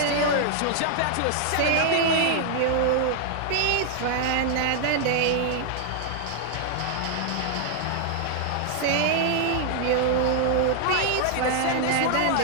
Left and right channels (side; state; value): both; different; correlation 0.00